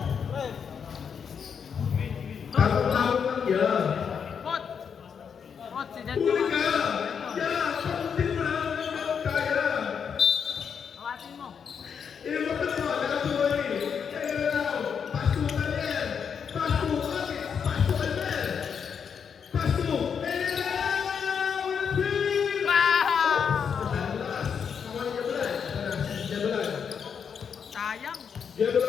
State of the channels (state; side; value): quieter; right; 6.9 dB